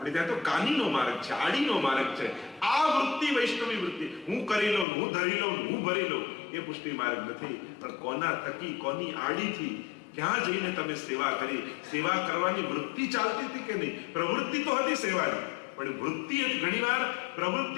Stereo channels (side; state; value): right; drops out; at 4.9 s